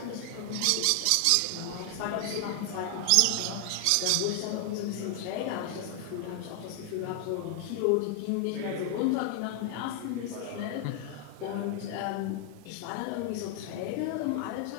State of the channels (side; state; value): both; different; correlation 0.00